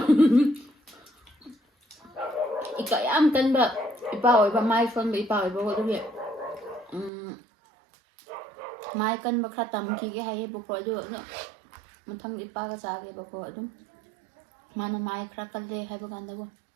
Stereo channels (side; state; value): left; drops out; at 7.1 s